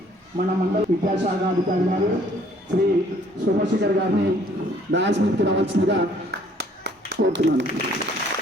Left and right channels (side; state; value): both; normal; correlation 0.60